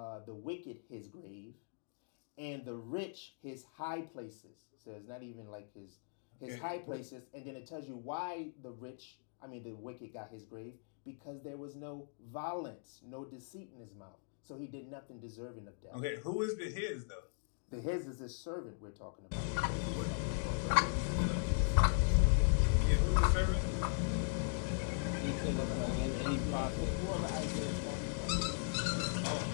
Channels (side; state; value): right; silent; digital silence